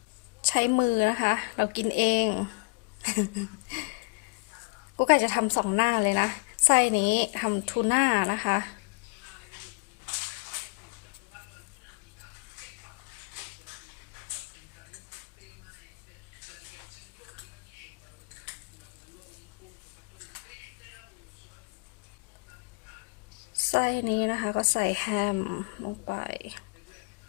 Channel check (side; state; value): right; quieter; 30.4 dB